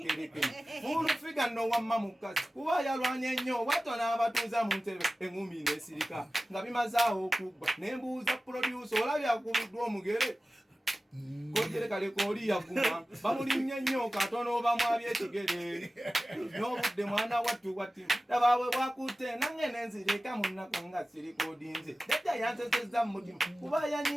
olufiga nno wamma mukazi kuba yalwanye nnyo bw'atyo n'abatuuza mu ntebe eŋŋumi n'esirika nga bimazaawo okugba ne mbuuza producer olabye akubiddwa omugere kojere kaleko oli yaguma bamulimye nnyo katono bamwabye ekigere n'obudde mwana wattu watti dabaabwe bwakutte nange nenzireka mu nnaku nga sirikodinze jjajja yansesezza mu mutima kuba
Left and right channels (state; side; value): normal; both; correlation 0.96